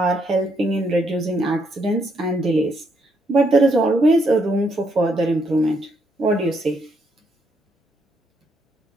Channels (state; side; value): normal; both; correlation 0.75